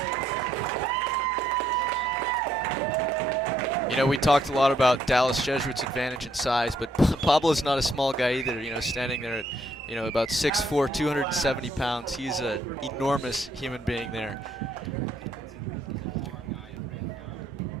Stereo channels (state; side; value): normal; both; correlation 0.71